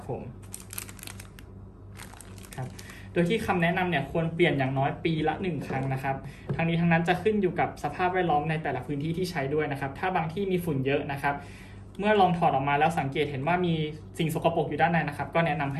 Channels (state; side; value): identical; both; correlation 1.00